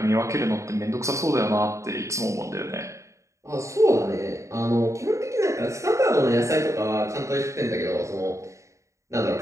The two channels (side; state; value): left; late; 0.15 ms